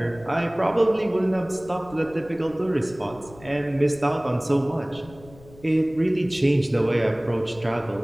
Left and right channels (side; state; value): left; noise; rumble, 22 dB below the sound